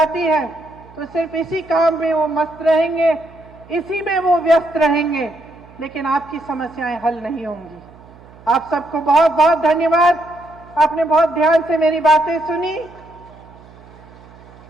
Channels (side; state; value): right; noise; hum, 23 dB below the sound